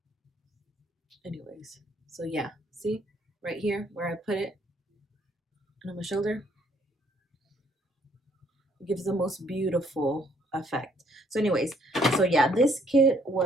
Anyways, so yeah, see right here where I put it on my shoulder, it gives the most beautiful effect. So anyways, so yeah, this kit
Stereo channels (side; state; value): both; normal; correlation 0.66